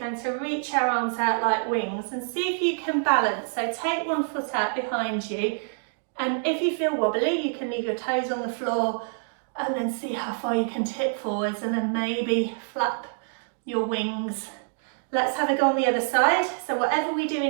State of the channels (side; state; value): left; silent; digital silence